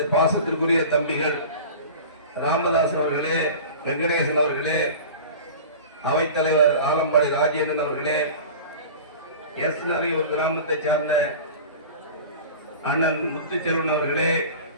பாசத்திற்குரிய தம்பிகள் ராமதாஸ் அவர்களே, வெங்கடேசன் அவர்களே, அவைத்தலைவர் ஆலம்பாடி ராஜேந்திரன் அவர்களே, எஸ்நரையூர் கிராமத்தை சார்ந்த அண்ணன் முத்துச்செல்வன் அவர்களே,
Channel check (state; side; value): inverted; both; correlation -0.36